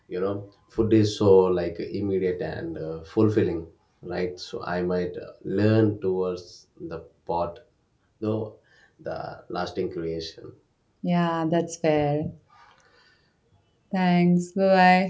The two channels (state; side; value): identical; both; correlation 1.00